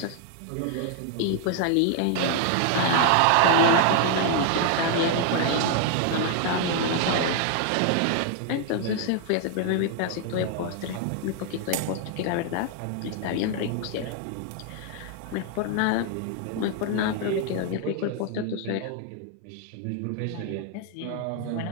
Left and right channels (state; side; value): different; both; correlation 0.00